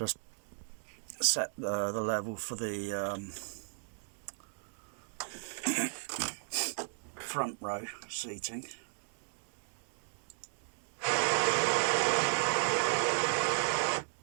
set the level for the front row seating.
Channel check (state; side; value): silent; left; digital silence